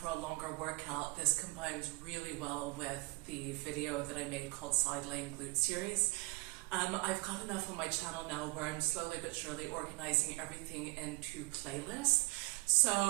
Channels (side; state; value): left; quieter; 25.2 dB